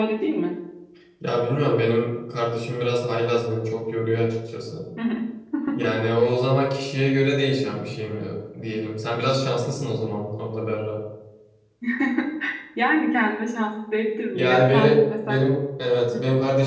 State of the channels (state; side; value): identical; both; correlation 1.00